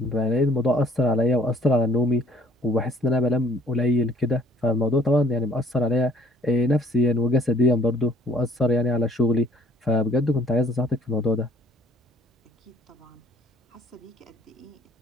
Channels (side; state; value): both; normal; correlation 0.59